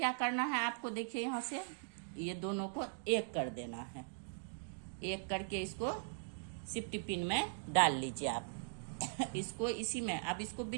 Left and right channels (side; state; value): left; silent; digital silence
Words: करना है आपको, देखिए यहाँ से ये दोनों को एक कर देना है। एक करके इसको सिफ्टी पिन में डाल लीजिए आप। इसको इसी में, अब इसको